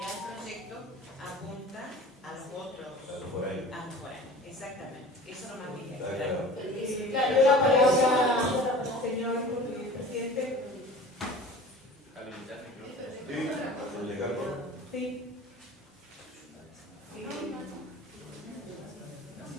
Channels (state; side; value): normal; both; correlation 0.41